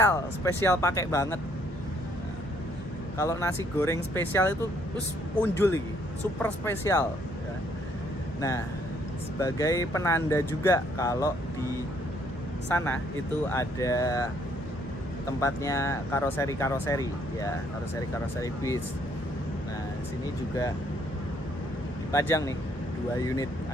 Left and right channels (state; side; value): normal; both; correlation 0.67